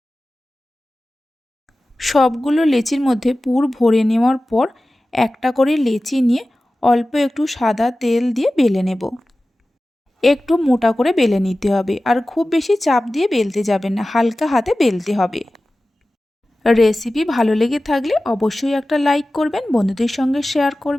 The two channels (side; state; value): both; normal; correlation 0.96